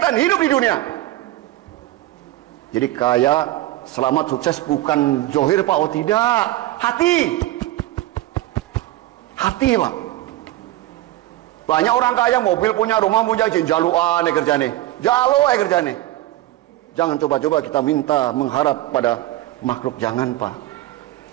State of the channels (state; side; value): quieter; left; 15.9 dB